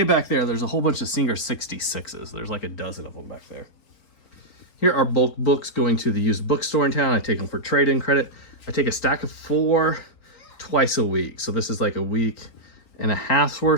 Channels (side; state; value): right; late; 4.2 ms